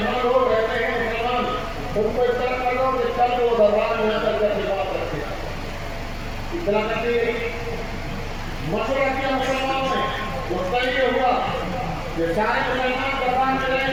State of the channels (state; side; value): identical; both; correlation 1.00